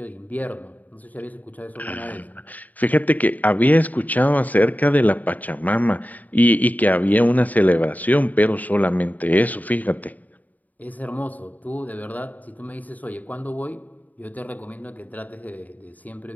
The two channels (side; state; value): right; late; 0.078 ms